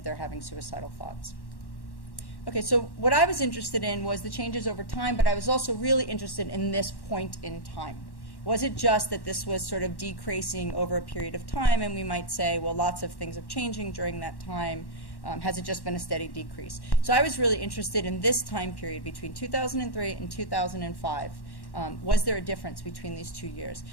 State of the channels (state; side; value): late; right; 1.1 ms